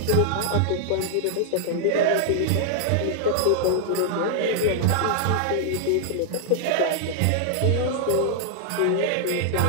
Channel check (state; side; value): different; both; correlation 0.00